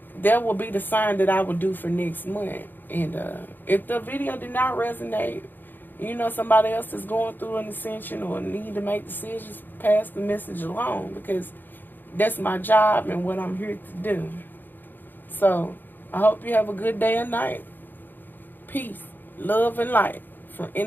that will be the sign that I will do for next month. And if the video did not resonate, somebody else is going through an ascension or need to make decisions, pass the message along, because that's my job and what I'm here to do. So I hope you have a good day and night. Peace, love, and light from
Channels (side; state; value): right; late; 0.091 ms